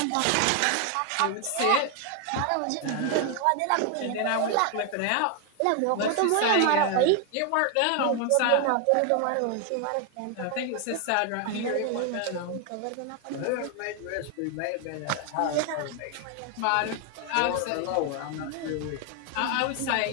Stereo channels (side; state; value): both; different; correlation 0.00